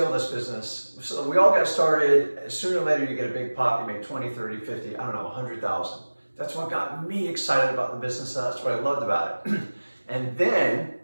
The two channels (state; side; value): inverted; both; correlation -1.00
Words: this business. So we all got started, sooner or later you get a big pop, you make 20, 30, 50, I don't know, 100,000. That's what got me excited about the business. That's what I loved about it. And then